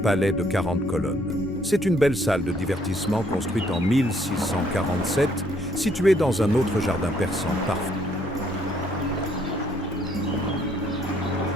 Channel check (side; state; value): both; normal; correlation 0.66